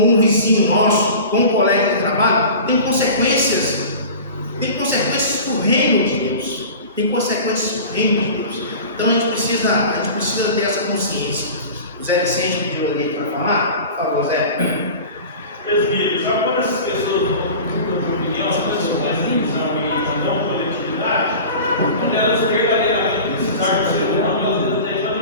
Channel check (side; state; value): both; inverted; correlation -0.36